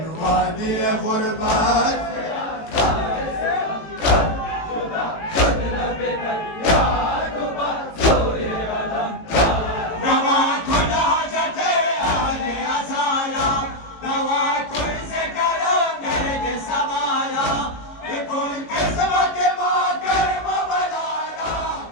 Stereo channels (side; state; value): right; late; 18 ms